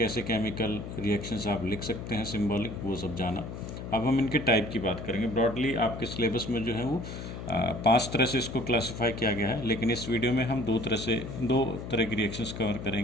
केमिकल रिएक्शंस आप लिख सकते हैं सिंबॉलिक, वो सब जाना। अब हम इनके टाइप की बात करेंगे। ब्रॉडली आपके सिलेबस में जो है वो 5 तरह से इसको क्लासिफाई किया गया है, लेकिन इस वीडियो में हम दो तरह की रिएक्शंस कवर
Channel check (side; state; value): left; noise; hum, 8 dB below the sound